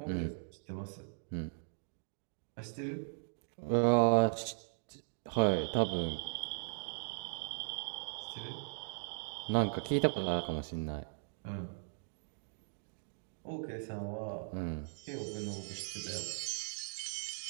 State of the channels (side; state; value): left; silent; digital silence